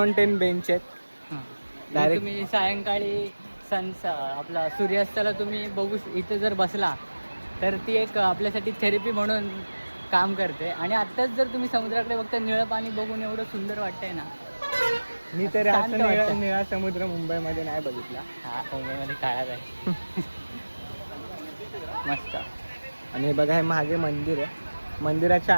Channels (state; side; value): inverted; both; correlation -1.00